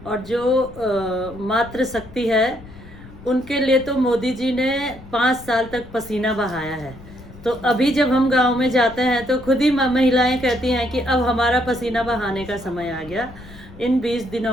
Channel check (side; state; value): left; noise; rumble, 19 dB below the sound